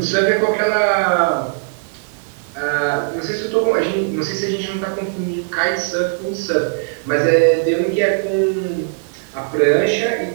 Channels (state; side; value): silent; left; digital silence